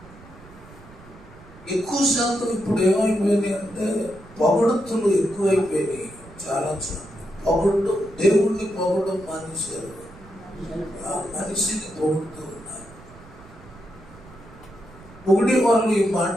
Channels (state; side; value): noise; right; rumble, 21 dB below the sound